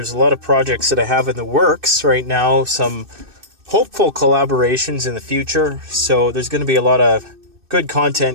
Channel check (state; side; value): late; left; 2.6 ms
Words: a lot of projects that I have in the works right now, some hopeful collaborations in the future. So there's going to be a lot of good